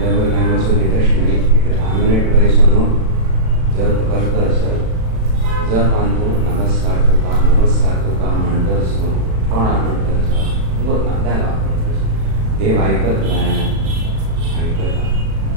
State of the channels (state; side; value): late; left; 36 ms